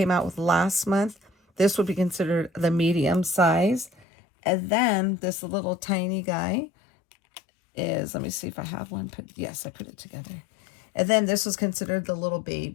out with last month, this would be considered the medium size. And then this little tiny guy is, let me see if I have one. Yes, I put it together. And then this was considered the little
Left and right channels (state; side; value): drops out; right; at 4.0 s